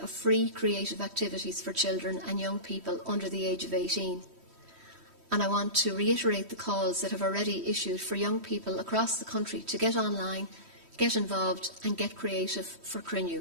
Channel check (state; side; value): late; left; 3.1 ms